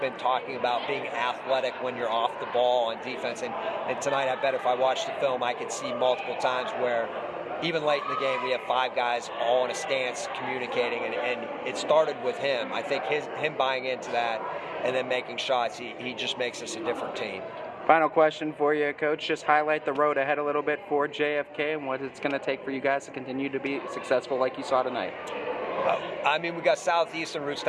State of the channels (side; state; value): both; identical; correlation 1.00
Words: talking about being athletic when you're off the ball on defense. And tonight, I bet if I watched the film, I could see multiple times where even late in the game, we have 5 guys all in a stance communicating, and it started with him. I think him buying into that and then making shots, he just makes us a different team. Final question for you, Coach. Just highlight the road ahead a little bit for JFK and what it's going to take for you guys to continue to be successful like you saw tonight. I mean, we got Southeast and